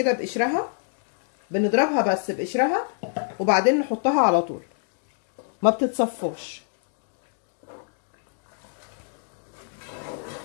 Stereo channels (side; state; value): right; silent; digital silence